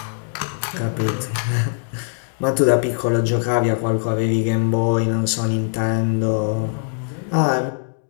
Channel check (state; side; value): silent; right; digital silence